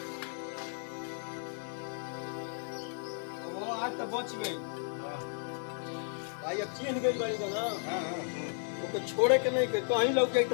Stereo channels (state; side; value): silent; right; digital silence